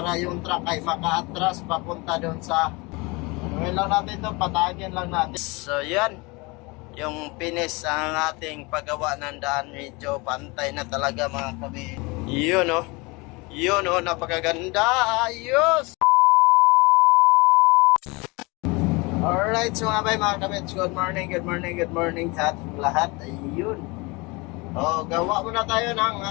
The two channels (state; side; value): quieter; right; 26.1 dB